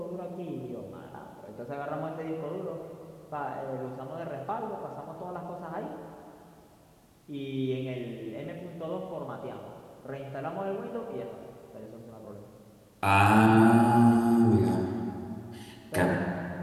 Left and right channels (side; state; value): both; identical; correlation 1.00